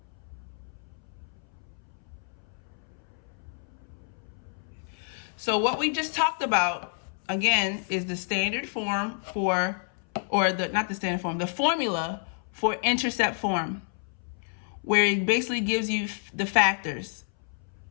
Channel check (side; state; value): right; silent; 58 dB below the other